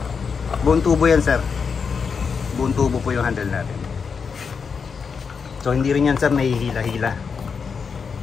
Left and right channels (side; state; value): right; quieter; 5.8 dB